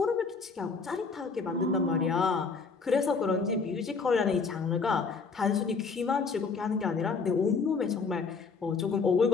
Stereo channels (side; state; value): right; quieter; 4.8 dB